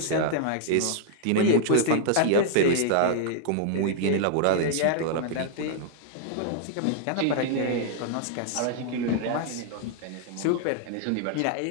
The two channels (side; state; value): both; different; correlation -0.01